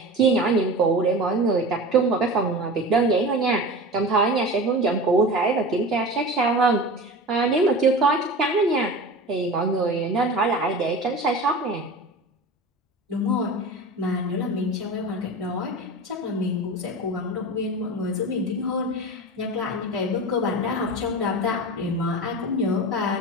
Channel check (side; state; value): both; normal; correlation 0.32